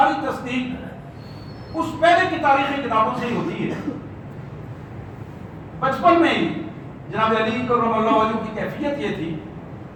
تصدیق اس پہلے کی تاریخی کتابوں سے ہی ہوتی ہے. بچپن میں ہی جناب علی کرم اللہ وجہہ کی کیفیت یہ تھی,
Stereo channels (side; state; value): both; identical; correlation 1.00